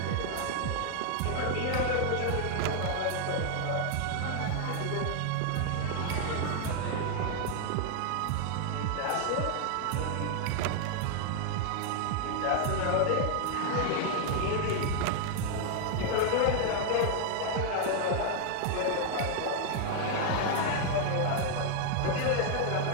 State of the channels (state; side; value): different; both; correlation 0.00